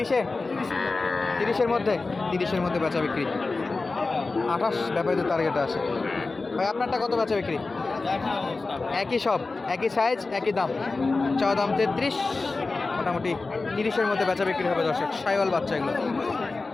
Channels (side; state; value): right; quieter; 3.7 dB